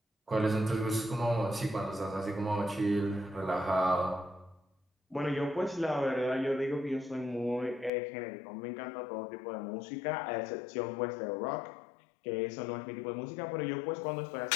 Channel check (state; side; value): drops out; right; at 7.9 s